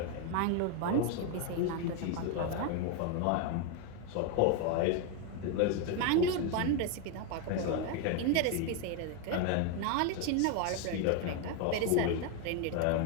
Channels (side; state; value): both; different; correlation 0.01